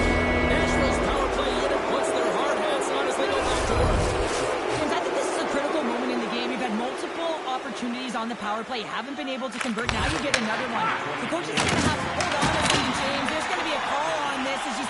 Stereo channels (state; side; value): identical; both; correlation 1.00